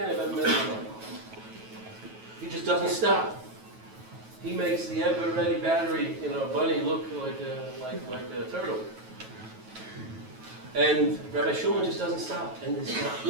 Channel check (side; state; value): left; late; 9.2 ms